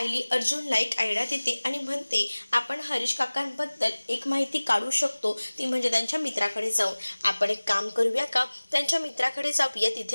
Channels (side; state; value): both; inverted; correlation -1.00